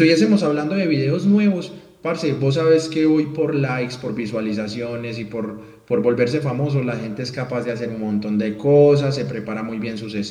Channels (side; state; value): both; identical; correlation 1.00